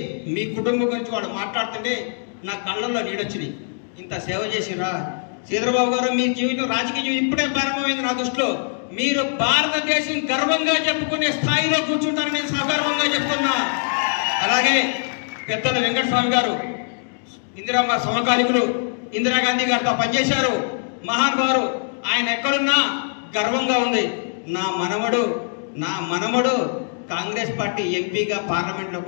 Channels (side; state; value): right; silent; digital silence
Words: మీ కుటుంబం గురించి వాళ్ళు మాట్లాడుతుంటే నా కళ్ళల్లో నీడొచ్చినాయి. ఇంత సేవ చేసిరా శ్రీధరబాబు గారు. మీ జీవితం, రాజకీయ జీవితం ఇప్పుడే ప్రారంభమైంది నా దృష్టిలో. మీరు భారతదేశం గర్వంగా చెప్పుకునే స్థాయిలో కూర్చుంటారని నేను సగర్వంగా చెప్తున్నా. అలాగే పెద్దల వెంకటస్వామి గారు, ఇందిరమ్మ సమకాలికులు, ఇందిరాగాంధీ గారితో పనిచేశారు, మహానుభావులు. ఆయన ఎక్కడున్నా గర్వంగా ఉంది. నా మనవడు కాంగ్రెస్ పార్టీ ఎంపీగా